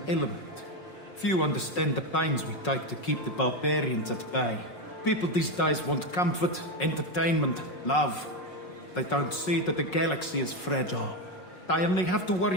element. Few understand the pains we take to keep the barbarians at bay. People these days want comfort, entertainment, love. They don't see that the galaxy is fragile. They only have to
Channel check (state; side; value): late; right; 5.5 ms